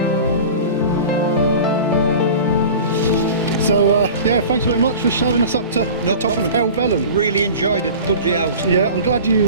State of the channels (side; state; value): both; inverted; correlation -0.37